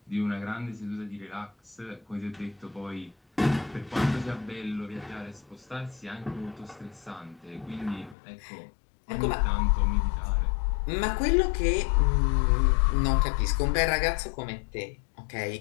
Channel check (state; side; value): drops out; right; at 8.2 s